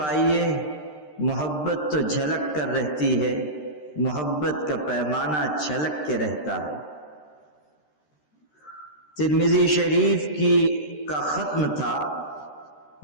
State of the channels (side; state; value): right; late; 13 ms